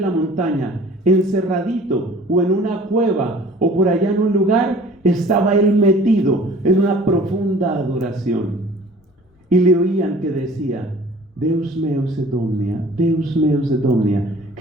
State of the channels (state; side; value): normal; both; correlation 0.48